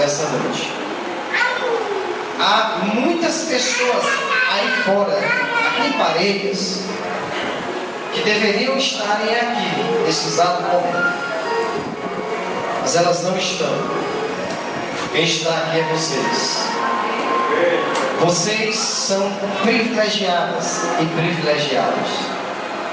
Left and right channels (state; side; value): identical; both; correlation 1.00